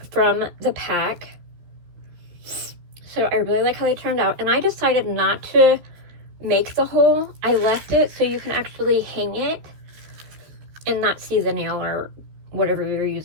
from the pack, so I really like how they turned out. And I decided not to make the hole. I left it so you can actually hang it and not see the nail or whatever you're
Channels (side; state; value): left; late; 13 ms